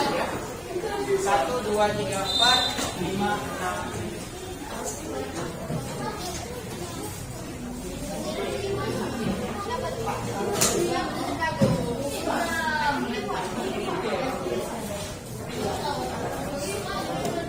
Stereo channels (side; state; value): both; identical; correlation 1.00